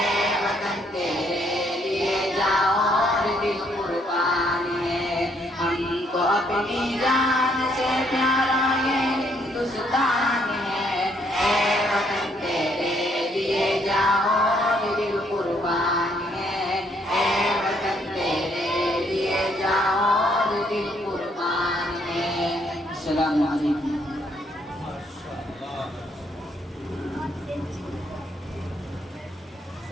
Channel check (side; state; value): both; normal; correlation 0.69